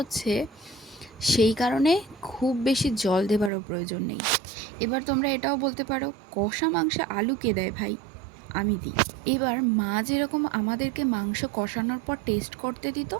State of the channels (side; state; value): left; drops out; at 3.5 s